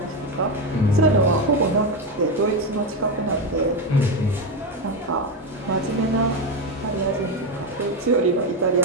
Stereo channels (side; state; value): both; normal; correlation 0.12